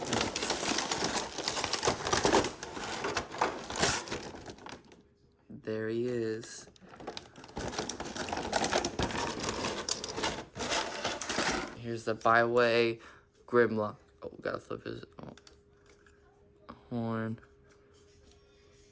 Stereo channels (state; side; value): identical; both; correlation 1.00